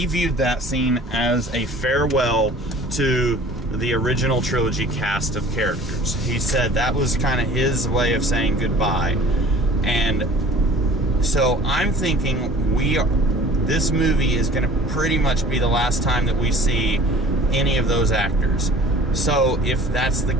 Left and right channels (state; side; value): normal; both; correlation 0.47